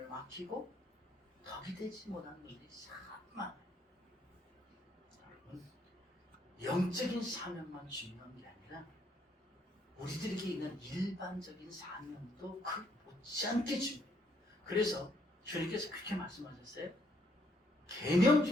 막히고 덕이 되지 못한 분들이 참 많아요. 여러분, 영적인 사명만 중요한 게 아니라 우리들에게 있는 일반적인 사명도 그 못지않게 중요해요. 그래서 주님께서 그렇게 말씀하셨어요. 계명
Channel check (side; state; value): both; normal; correlation 0.70